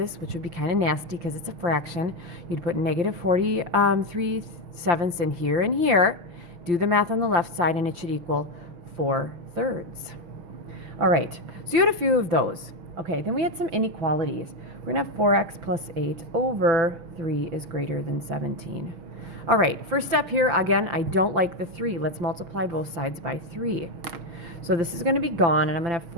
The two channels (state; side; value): late; left; 5.8 ms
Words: which would be kind of nasty because it's a fraction, you'd put negative 43 sevenths in here and here. Do the math on the left side, and it should equal 4 thirds. All right, so you had a few of those. Okay, then we had some inequalities. We're going to have 4x plus 8 over 3 is greater than 17. All right, first step here, again, I don't like the 3. Let's multiply both sides by 3. So this is going to be gone, and I'm going to have